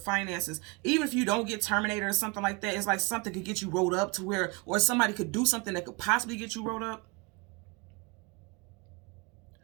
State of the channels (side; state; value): left; quieter; 29.2 dB